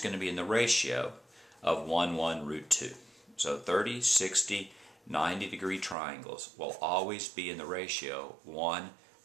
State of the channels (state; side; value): drops out; left; at 6.0 s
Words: to be in the ratio of 1, 1, root 2. So 30, 60, 90-degree triangles will always be in the ratio 1,